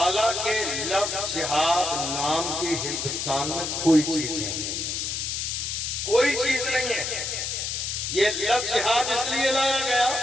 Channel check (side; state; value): left; noise; hiss, 2 dB below the sound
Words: لفظ جہاد نام کی ہندوستان میں کوئی چیز نہیں، کوئی چیز نہیں ہے۔ یہ لفظ جہاد اس لیے لایا گیا